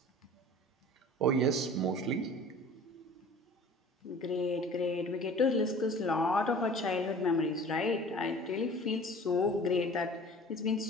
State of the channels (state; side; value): normal; both; correlation 0.44